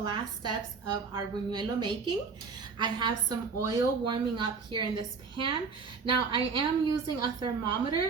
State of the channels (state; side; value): quieter; left; 5.0 dB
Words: steps of our buñuelo making. I have some oil warming up here in this pan. Now I am using a